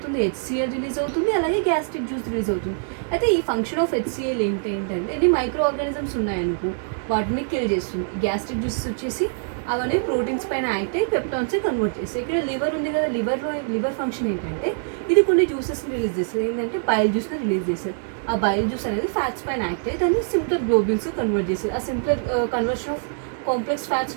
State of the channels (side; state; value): left; silent; digital silence